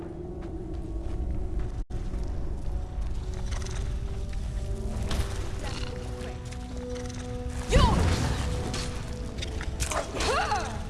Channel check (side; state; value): both; identical; correlation 1.00